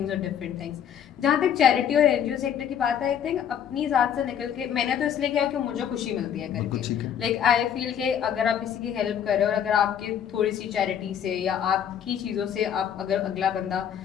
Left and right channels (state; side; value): quieter; right; 8.9 dB